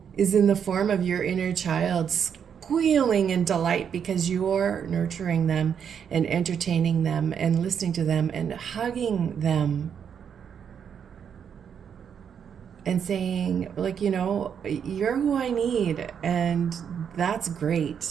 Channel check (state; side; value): quieter; left; 7.7 dB